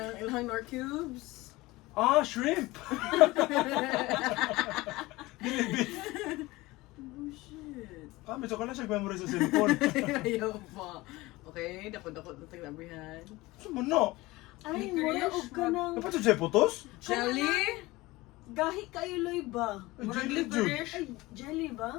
ilang Nor Cubes? Ah, shrimp! Dili beef. Oh, shit. Ah, medyo ka na siya memory sa cellphone. Ayaw pa. Okay, dako-dako na taglabihan. Sumuno. Ay, mura og ka ng... Dapat siya putos? Jelly? Gahi kayo, Loy ba? Ay, Murag jelly licorice. Ay, jelly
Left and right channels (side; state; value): right; quieter; 20.4 dB